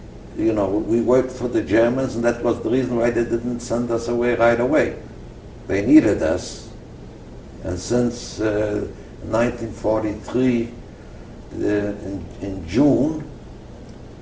we worked for the Germans, and that was the reason why they didn't send us away right away. They needed us. And since 1943, in June,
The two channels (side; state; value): both; identical; correlation 1.00